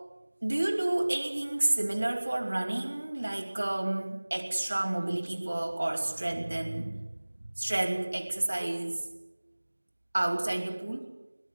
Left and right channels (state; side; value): inverted; both; correlation -1.00